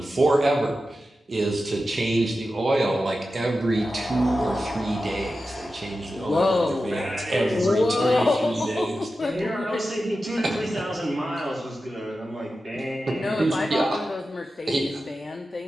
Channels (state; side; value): normal; both; correlation 0.92